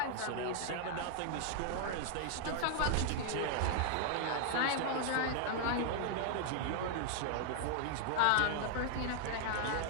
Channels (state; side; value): different; both; correlation 0.00